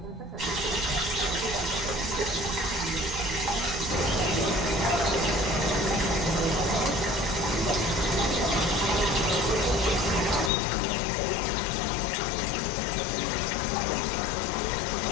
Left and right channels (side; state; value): right; drops out; at 10.5 s